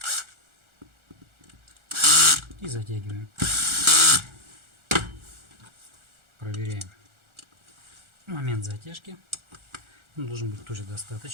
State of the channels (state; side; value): late; left; 1.4 ms